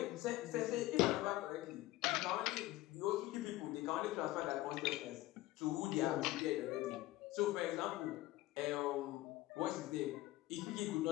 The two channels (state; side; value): quieter; right; 17.3 dB